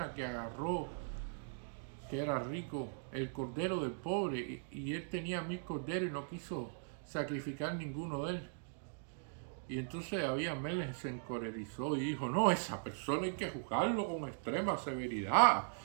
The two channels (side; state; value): left; silent; digital silence